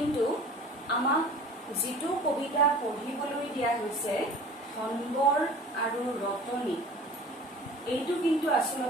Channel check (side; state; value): both; normal; correlation 0.43